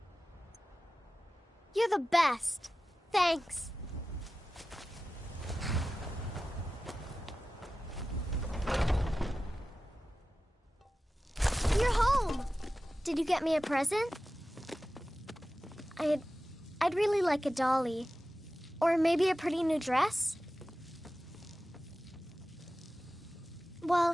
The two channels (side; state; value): both; normal; correlation 0.95